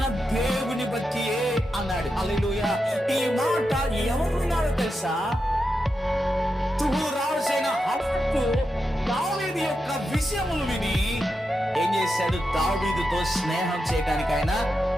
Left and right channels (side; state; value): both; normal; correlation 0.87